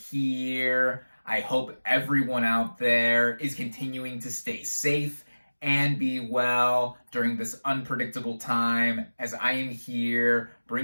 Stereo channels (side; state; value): both; inverted; correlation -1.00